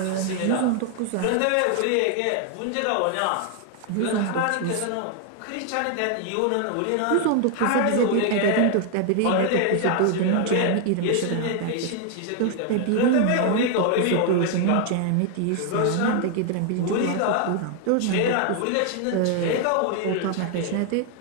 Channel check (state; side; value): different; both; correlation 0.00